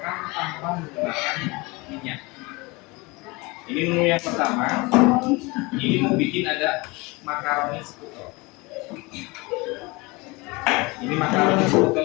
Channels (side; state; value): right; quieter; 25.0 dB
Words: tanpa menggunakan minyak. Ini menu yang pertama, ini mau bikin ada makaroni sekutel. Ini makaroni sekutel